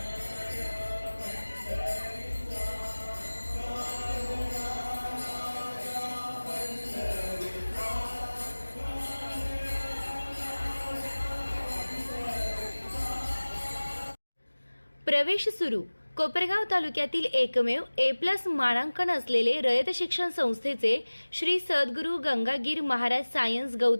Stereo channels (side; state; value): both; inverted; correlation -1.00